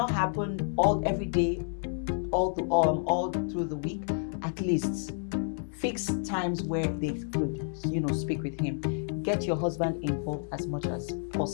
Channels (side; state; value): right; silent; digital silence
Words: happen every day, all through the week, at least fix times where they could, speak with him. Get your husband involved as much as